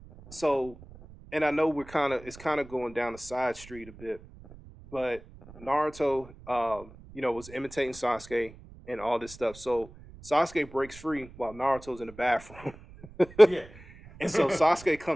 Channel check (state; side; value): noise; right; rumble, 19 dB below the sound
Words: So, and I know it's kind of going down the side street a bit, but Naruto, was imitating Sasuke and all this stuff. So Sasuke breaks free while Naruto's in the bathroom, Yeah. and so Sasuke